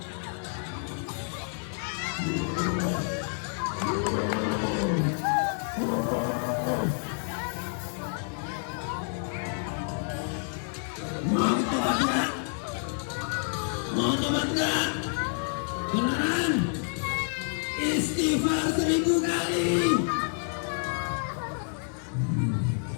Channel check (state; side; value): silent; right; 59 dB below the other